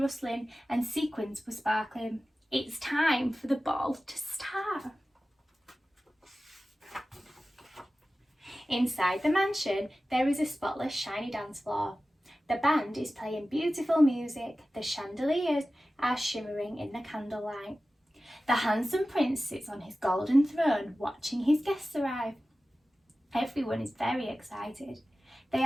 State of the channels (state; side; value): normal; both; correlation 0.95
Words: and sequins were sparkling. It's time for the ball to start. Inside the mansion, there is a spotless, shiny dance floor. The band is playing beautiful music. The chandeliers are shimmering in the candlelight. The handsome prince sits on his golden throne, watching his guests arrive. Everyone is very excited. They